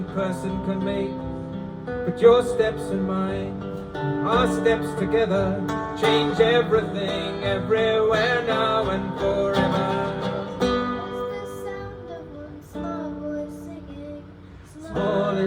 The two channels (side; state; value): both; identical; correlation 1.00